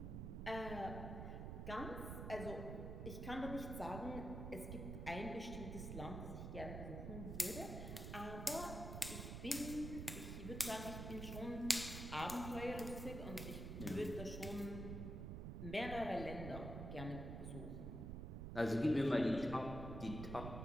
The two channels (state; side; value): noise; right; rumble, 5 dB below the sound